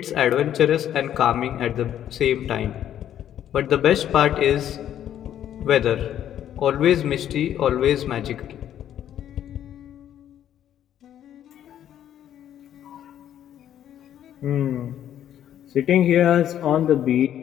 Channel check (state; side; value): quieter; right; 10.7 dB